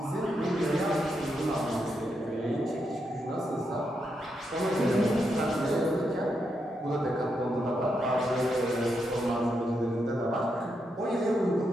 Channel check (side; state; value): both; normal; correlation 0.82